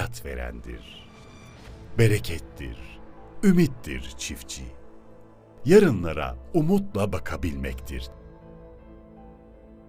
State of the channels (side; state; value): both; identical; correlation 1.00